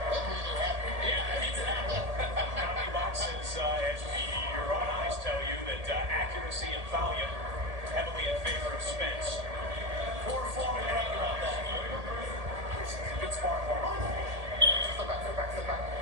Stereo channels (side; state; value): left; late; 1.8 ms